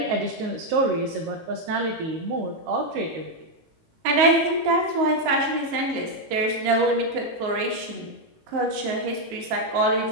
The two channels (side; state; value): left; late; 19 ms